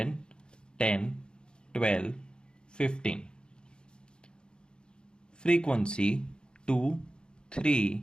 10, 12, 15. Frequency 2, 3,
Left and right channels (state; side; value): late; right; 0.050 ms